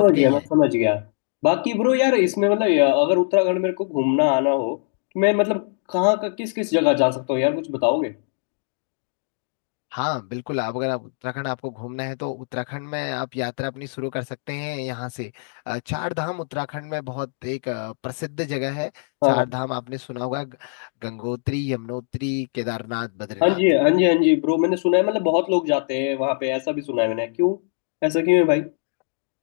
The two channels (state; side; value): silent; right; digital silence